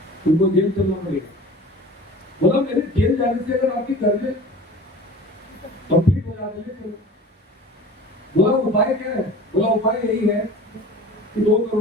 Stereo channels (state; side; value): normal; both; correlation 0.40